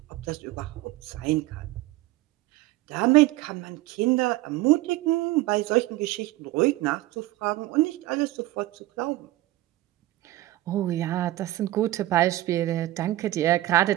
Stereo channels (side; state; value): left; quieter; 16.8 dB